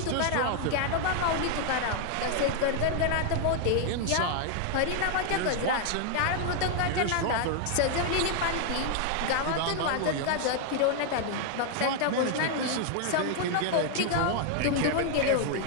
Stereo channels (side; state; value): both; different; correlation 0.00